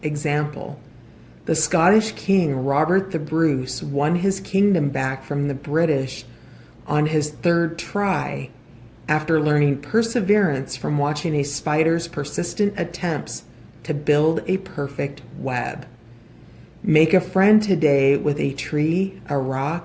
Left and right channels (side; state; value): both; identical; correlation 1.00